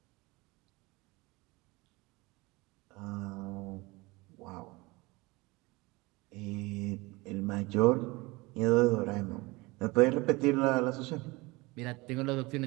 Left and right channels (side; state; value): left; quieter; 23.4 dB